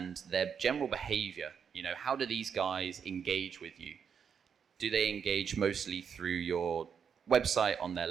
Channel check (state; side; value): quieter; left; 7.0 dB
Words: their general behavior. How do these guys engage with you? Do they engage mostly through your website on their